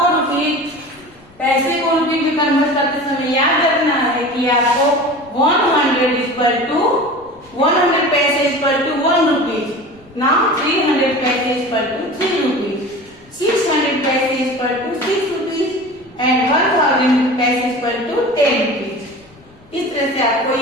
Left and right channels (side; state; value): left; noise; rumble, 28 dB below the sound